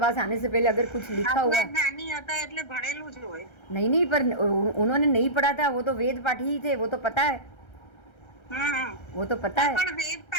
आने से पहले अगर कुछ लिखा हुआ ज्ञानी होता એટલે ભણેલું જ હોય। नहीं, पर उन्होंने नहीं पढ़ा था, वो तो वेद पाठी ही थे, वो तो पता है, वो तो पता है। પણ વેદ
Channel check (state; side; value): late; right; 1.3 ms